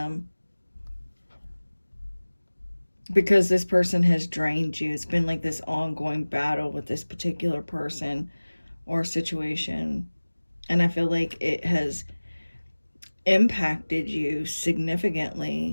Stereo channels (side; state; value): both; inverted; correlation -1.00